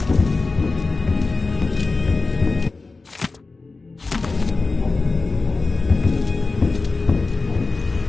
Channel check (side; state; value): right; quieter; 3.8 dB